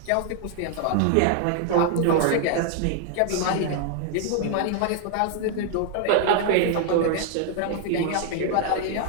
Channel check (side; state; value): both; different; correlation 0.00